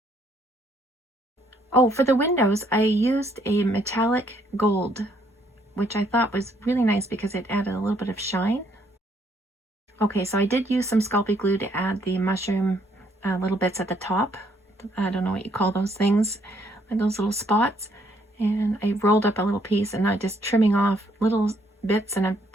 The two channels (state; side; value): normal; both; correlation 0.69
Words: Oh, for the windows, I used a metallic gold, which I thought was really nice because it added a little bit of shine. Okay, so I did use some Sculpey glue to add the mushroom little bits at the top. I don't know what you call those things, like those little spots. And I rolled up a little piece, and I'm just trimming off little bits, and I've